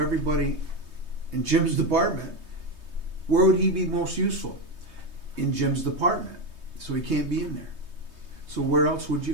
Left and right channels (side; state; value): left; late; 3.2 ms